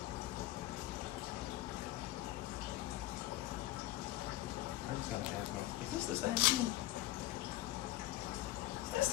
I just gotta ask myself, is this the same thing? Is this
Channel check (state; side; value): quieter; right; 15.9 dB